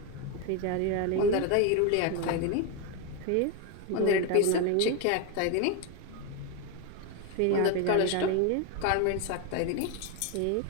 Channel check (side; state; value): both; different; correlation 0.02